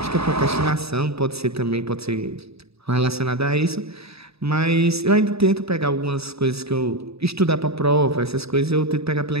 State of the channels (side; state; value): left; late; 0.78 ms